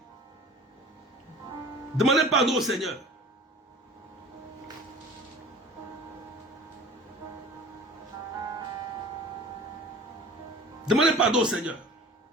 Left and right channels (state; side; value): normal; both; correlation 0.42